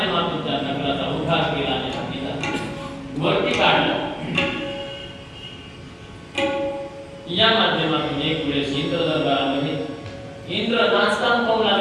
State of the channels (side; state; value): both; identical; correlation 1.00